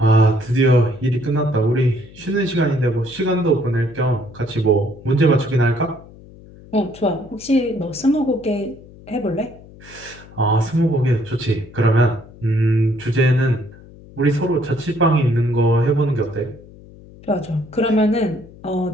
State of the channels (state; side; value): noise; left; hum, 21 dB below the sound